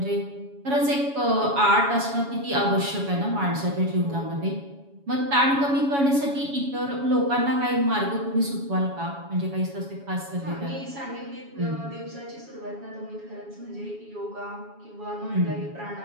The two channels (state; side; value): late; left; 7.2 ms